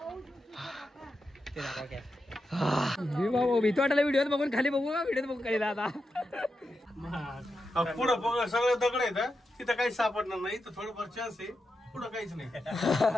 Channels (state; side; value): normal; both; correlation 0.88